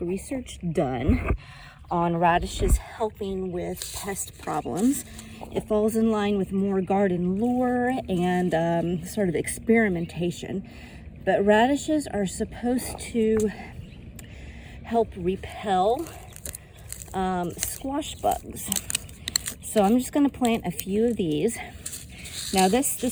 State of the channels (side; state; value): both; identical; correlation 1.00